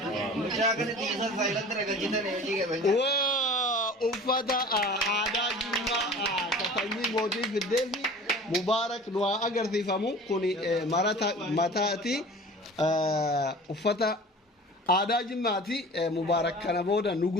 mujagan tisa silent rega jita ne ji ke wa ufada ada juma katani modi gideli mubarak dua agar tifamu kuni marata matati ufata ada jimati mubarak kana boda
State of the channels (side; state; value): both; normal; correlation 0.41